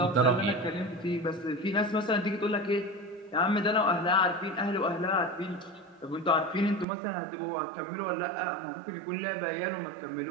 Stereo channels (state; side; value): drops out; left; at 6.9 s